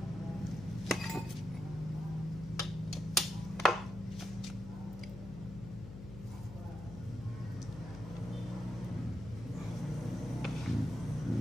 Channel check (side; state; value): left; noise; hum, 11 dB below the sound